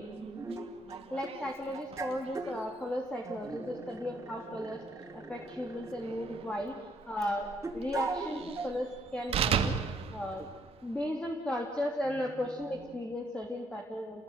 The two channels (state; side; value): normal; both; correlation 0.69